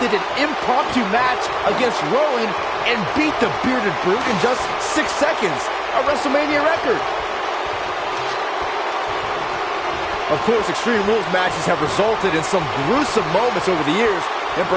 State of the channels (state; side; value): identical; both; correlation 1.00